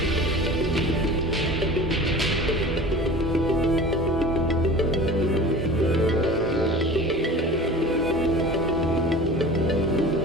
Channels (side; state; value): both; normal; correlation 0.39